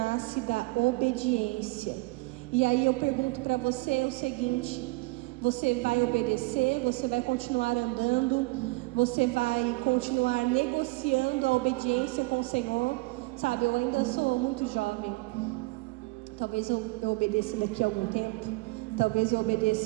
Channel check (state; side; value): quieter; left; 23.9 dB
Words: da obediência. E aí eu pergunto para você o seguinte: você vai obedecer? Você vai continuar andando? Você vai continuar negociando a obediência com o Senhor? Sabe, eu ainda sou muito jovem. Talvez eu obedeça daqui a algum tempo. Talvez eu